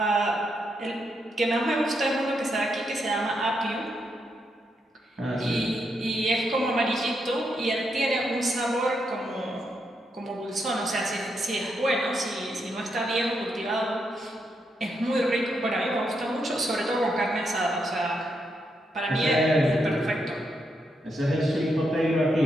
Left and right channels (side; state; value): both; normal; correlation 0.81